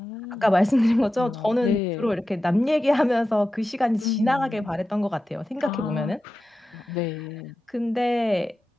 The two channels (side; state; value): both; normal; correlation 0.92